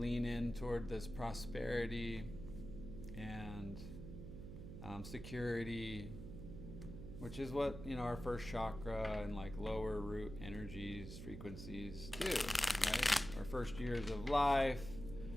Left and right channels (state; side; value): noise; right; hum, 10 dB below the sound